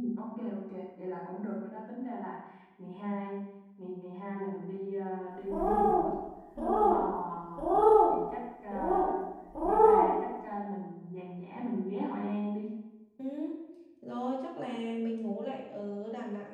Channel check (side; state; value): both; identical; correlation 1.00